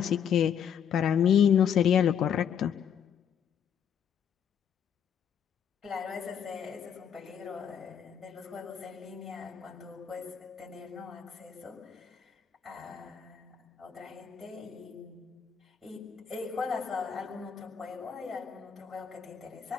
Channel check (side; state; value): right; quieter; 8.2 dB